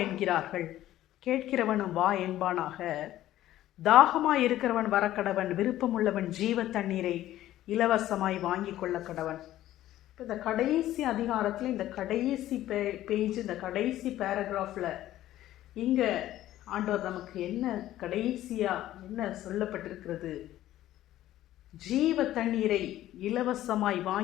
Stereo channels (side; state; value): right; quieter; 13.9 dB